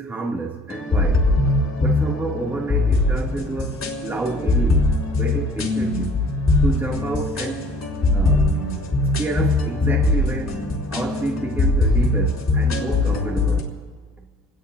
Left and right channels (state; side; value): normal; both; correlation 0.53